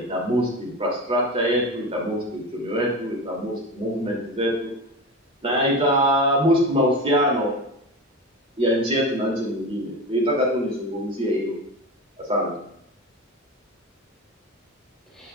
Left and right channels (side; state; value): both; normal; correlation 0.26